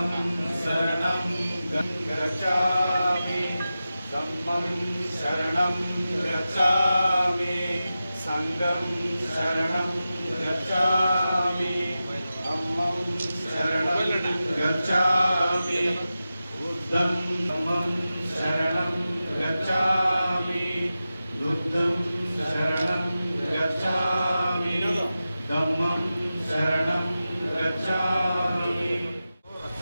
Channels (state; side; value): inverted; both; correlation -0.93